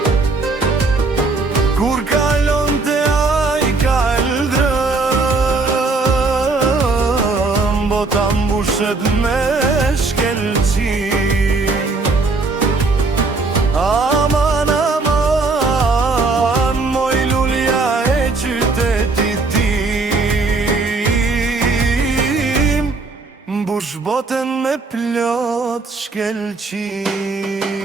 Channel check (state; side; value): quieter; left; 3.7 dB